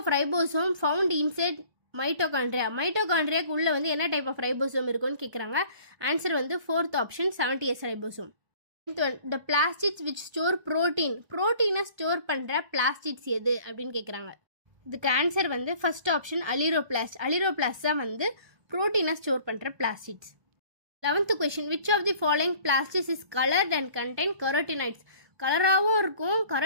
ribosome found inside mitochondria. மைட்டோகாண்ட்ரியாக்கு உள்ளே வந்து என்ன டைப் ஆஃப் ரைபோசோம் இருக்குன்னு கேட்குறாங்க. ஆன்சர் வந்து fourth option 70S ribosome. Ninth one, the plastids which store protein. ப்ரோட்டீனை ஸ்டோர் பண்ணுற பிளாஸ்டிட்ஸ் எது அப்படின்னு கேட்குறாங்க. இதுக்கு ஆன்சர் வந்து ஃபர்ஸ்ட் ஆப்ஷன் அலிரோபிளாஸ்ட். அலிரோபிளாஸ்ட் தான் வந்து ப்ரோட்டீனை ஸ்டோர் பண்ணுற plastids. 11th question, which of the following plastics is coloured and contain carotenoids. கலராகவும் இருக்கும்,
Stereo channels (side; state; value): left; late; 1.4 ms